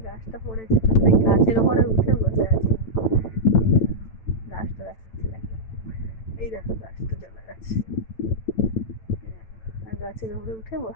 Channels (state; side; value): late; right; 9.0 ms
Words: গাছটা পড়েছে, তো সেই গাছের উপরে উঠে বসে আছে। গাছটা দেখাচ্ছে, দেখো এই দেখো গাছটা চলে গেছে, আর গাছের উপরে উঠে